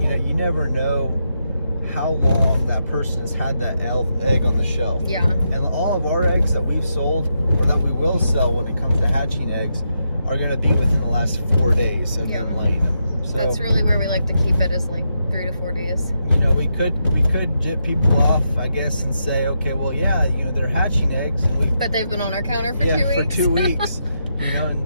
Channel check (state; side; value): inverted; both; correlation -0.83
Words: never know how long that person has had that egg on the shelf. Yeah. And all of our eggs that we've sold or that we will sell when it comes to hatching eggs are going to be within the last 4 days of them laying them. So that's really where we like to keep it, is like 3 to 4 days. We could jip people off, I guess, and say, okay, well, yeah, they're hatching eggs, and but they've been on our counter for 2 weeks. for 2 weeks.